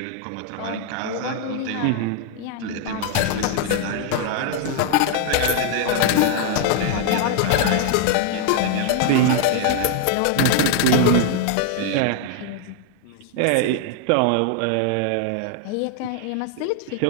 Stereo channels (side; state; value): both; different; correlation 0.00